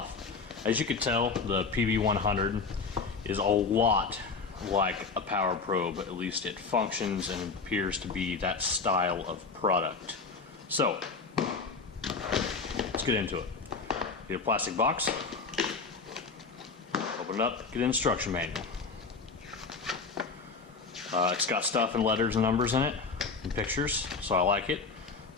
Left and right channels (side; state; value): right; quieter; 4.5 dB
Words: As you can tell, the PB100 is a lot like a power probe. At least it functions and appears to be that style of product. So, let's get into it. Get a plastic box, open it up, get an instruction manual. It's got stuff and letters and numbers in it, and pictures, so I like it.